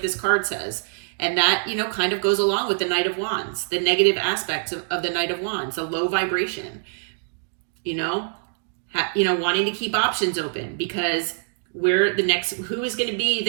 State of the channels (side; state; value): left; silent; digital silence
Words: card says. And that, you know, kind of goes along with the Knight of Wands, the negative aspects of the Knight of Wands, a low vibration. You know, wanting to keep options open because where the next, who is going to be